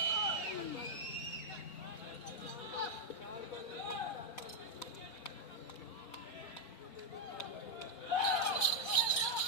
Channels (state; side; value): late; right; 4.1 ms